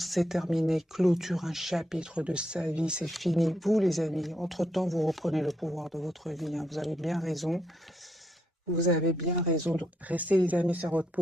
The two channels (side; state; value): both; normal; correlation 0.78